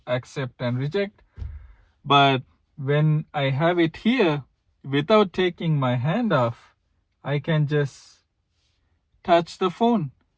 accept and reject. But when I have it here, without taking my hand off, I can just touch the phone,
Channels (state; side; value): identical; both; correlation 1.00